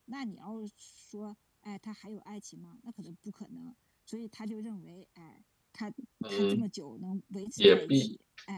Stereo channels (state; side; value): identical; both; correlation 1.00